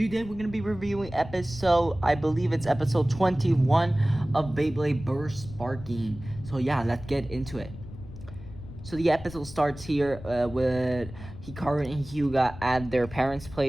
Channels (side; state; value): left; noise; rumble, 14 dB below the sound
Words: we're gonna be reviewing episode, I believe it's episode 21 of Beyblade Burst Sparking. So yeah, let's get into it. So the episode starts here with Hikaru and Hyuga at their parents'